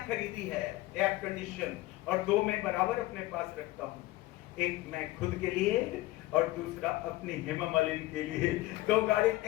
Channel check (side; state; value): right; quieter; 17.9 dB